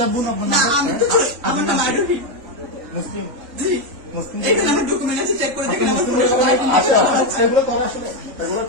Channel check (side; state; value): left; late; 3.5 ms